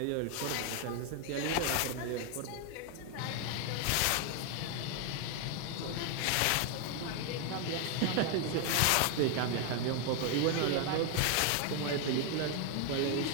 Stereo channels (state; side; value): different; both; correlation 0.00